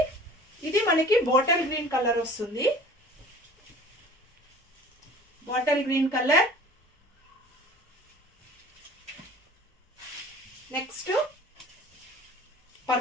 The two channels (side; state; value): both; normal; correlation 0.46